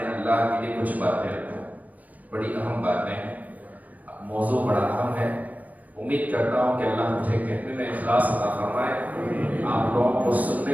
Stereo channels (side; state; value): left; late; 0.077 ms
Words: اللہ کے لیے کچھ باتیں رکھوں۔ بڑی اہم باتیں ہیں، موضوع بڑا اہم ہے۔ امید کرتا ہوں کہ اللہ مجھے کہنے میں اخلاص عطا فرمائے، آپ لوگوں کو